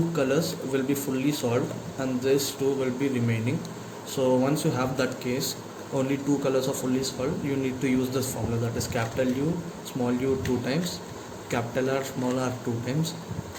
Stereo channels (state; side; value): identical; both; correlation 1.00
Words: colors will be fully solved and these two will be remaining. So once you have that case, only two colors are fully solved, you need to use this formula, that is capital U small u 2 times, capital R small r 2 times,